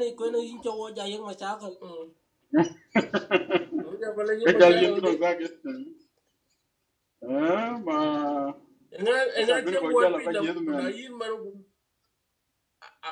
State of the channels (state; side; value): identical; both; correlation 1.00